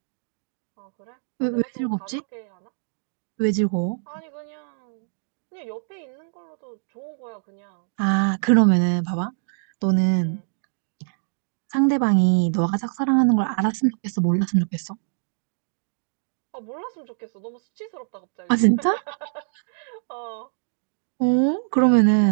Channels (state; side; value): silent; left; digital silence